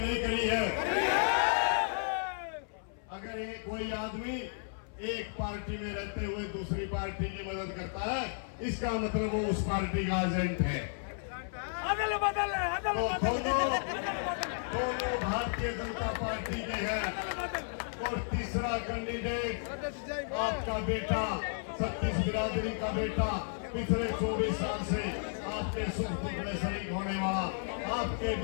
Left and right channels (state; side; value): silent; right; 56 dB below the other